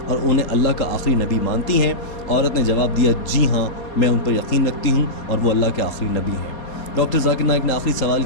اور انہیں اللہ کا آخری نبی مانتی ہیں؟ عورت نے جواب دیا جی ہاں میں ان پر یقین رکھتی ہوں اور وہ اللہ کے آخری نبی ہیں. ڈاکٹر ذاکر نائک نے آخری سوال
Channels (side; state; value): right; late; 4.2 ms